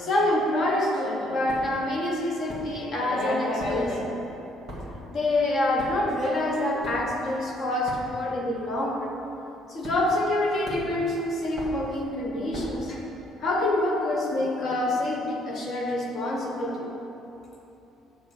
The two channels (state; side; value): normal; both; correlation 0.66